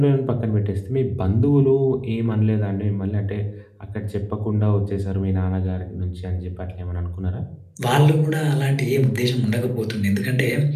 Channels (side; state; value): both; identical; correlation 1.00